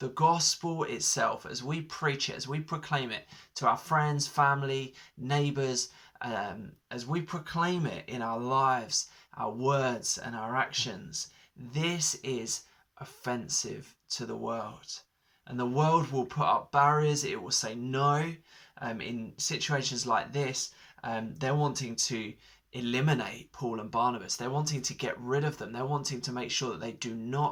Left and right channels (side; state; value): both; identical; correlation 1.00